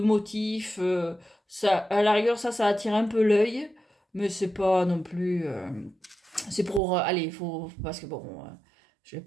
Ça, à la rigueur, ça attire un peu l'œil, mais c'est pas non plus. C'est pour. Allez, il faut. Parce que bon. je vais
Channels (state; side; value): drops out; left; at 6.8 s